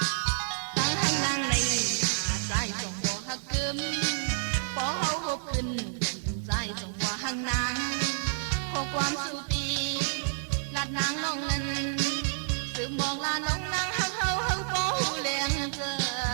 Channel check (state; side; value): silent; left; digital silence